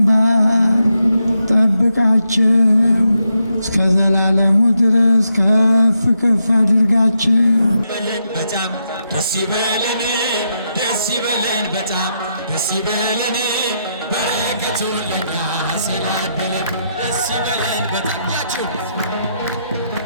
ጠብቃቸው እስከ ዘላለሙ ድረስ ከፍ ከፍ አድርጋቸው። በጣም ደስ ይበለን፣ ደስ ይበለን፣ በጣም ደስ ይበለን፣ በረከቱ ለኛ ስላደለን ደስ ይበለን በጣም ያችሁ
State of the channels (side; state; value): both; inverted; correlation -0.82